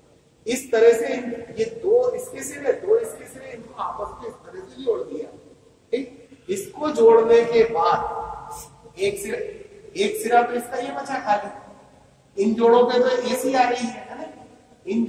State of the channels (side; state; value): both; identical; correlation 1.00